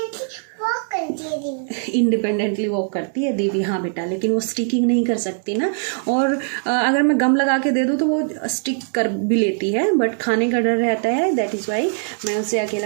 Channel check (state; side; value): silent; left; digital silence